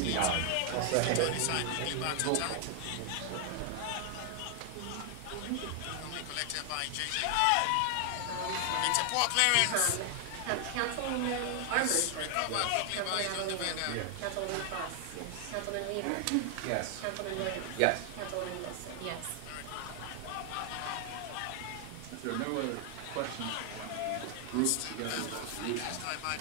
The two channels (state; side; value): different; both; correlation 0.00